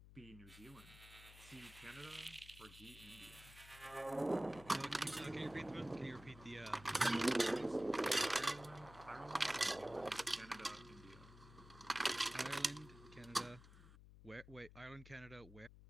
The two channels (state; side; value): noise; left; hum, 18 dB below the sound